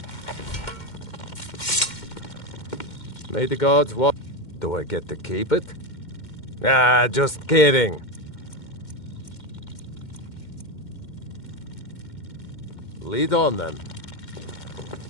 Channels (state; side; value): late; right; 2.1 ms